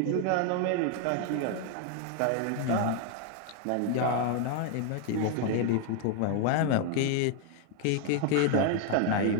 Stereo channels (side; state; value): both; different; correlation 0.00